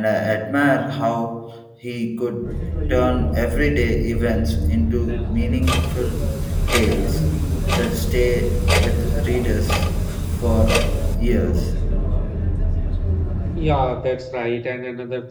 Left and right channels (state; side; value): identical; both; correlation 1.00